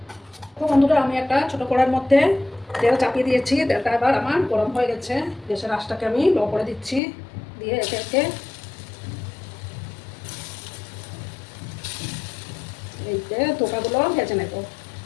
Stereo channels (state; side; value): drops out; right; at 7.0 s